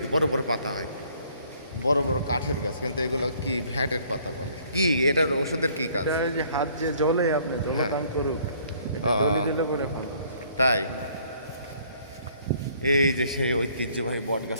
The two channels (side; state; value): both; inverted; correlation -0.61